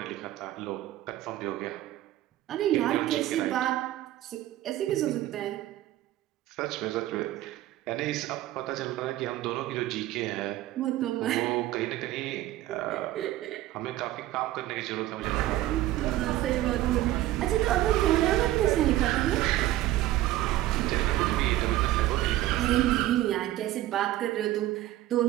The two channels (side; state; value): left; quieter; 14.9 dB